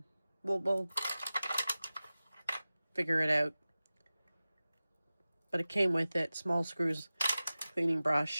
We'll figure it out. But it came with it. Small screws, cleaning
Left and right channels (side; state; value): both; inverted; correlation -0.97